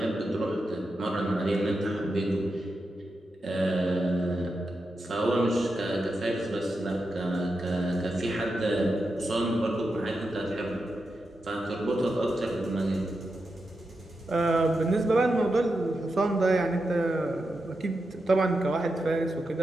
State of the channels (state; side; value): normal; both; correlation 0.88